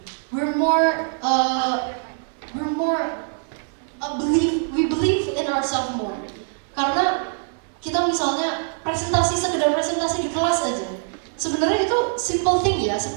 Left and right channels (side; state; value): left; silent; 63 dB below the other